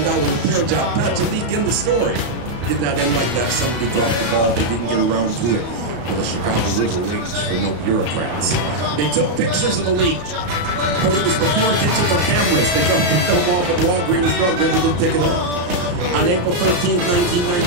repair job. Patch a leak in the story. Did not end like that. Somebody dropped the ball. They didn't get around to it. For the Chicago River waits for no bureaucrats. They took pictures of the leak, but it was before digital cameras. They dropped the film off at Walgreens Drug. Never did pick it up. On April 13,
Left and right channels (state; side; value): late; left; 34 ms